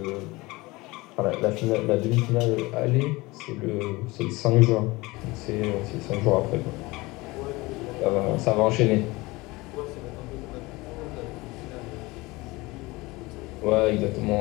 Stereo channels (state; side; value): quieter; right; 22.1 dB